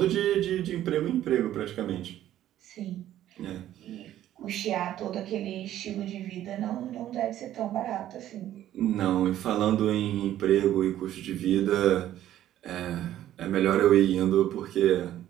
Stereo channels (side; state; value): left; quieter; 12.5 dB